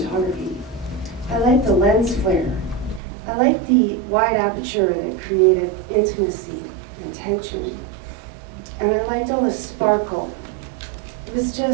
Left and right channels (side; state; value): left; drops out; at 3.0 s